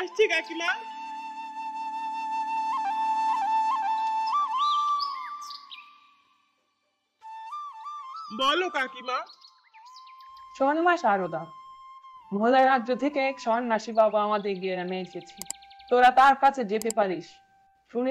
কাকিমা। বলো কাকিমা। শোন মা সারদা, ভোলা রাজ্য থেকে এক সন্ন্যাসী বাবা আমাদের গ্রামে এসেছে। তোরা তার কাছে যেতে পারিস।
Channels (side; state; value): both; identical; correlation 1.00